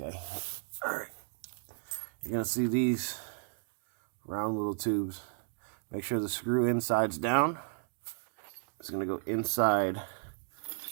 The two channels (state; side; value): silent; left; 55 dB below the other